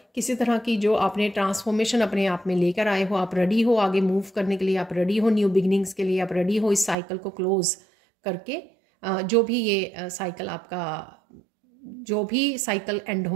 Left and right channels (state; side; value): drops out; left; at 7.0 s